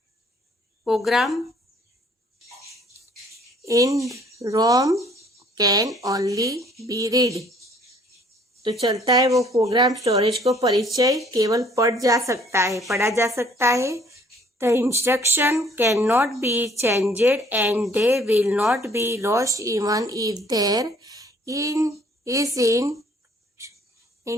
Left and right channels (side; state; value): both; normal; correlation 0.59